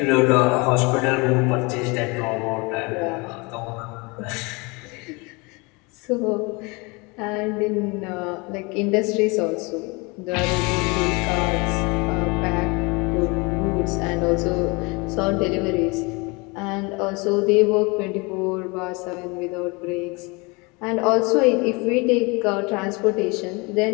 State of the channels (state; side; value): quieter; right; 27.5 dB